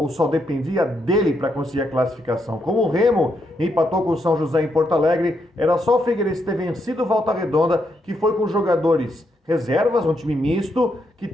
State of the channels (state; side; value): normal; both; correlation 0.79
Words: só dependia dele para conseguir a classificação. Como o Remo empatou com o São José em Porto Alegre, era só o Figueirense ter vencido o Volta Redonda, que foi com jogadores reservas, um time misto, que